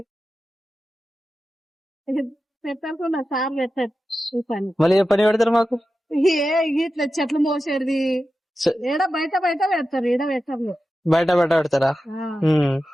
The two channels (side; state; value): both; normal; correlation 0.92